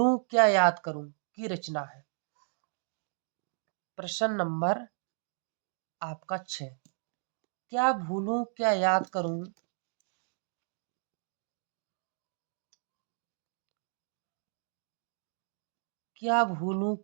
क्या याद करूं की रचना है। प्रश्न नंबर आपका 6, क्या भूलूं क्या याद करूं क्या भूलूं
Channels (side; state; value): left; silent; digital silence